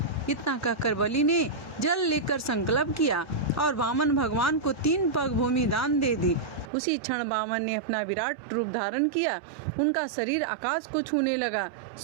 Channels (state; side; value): drops out; left; at 6.7 s